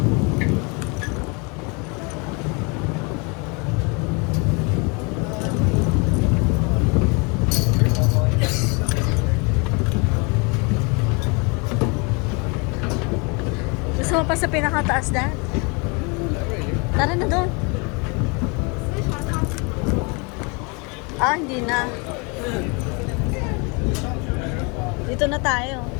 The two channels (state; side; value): quieter; right; 31.1 dB